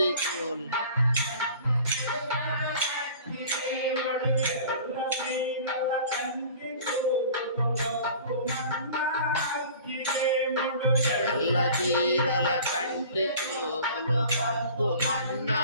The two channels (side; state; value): both; inverted; correlation -0.45